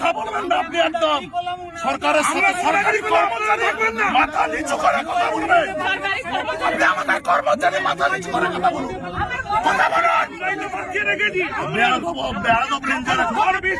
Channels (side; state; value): both; identical; correlation 1.00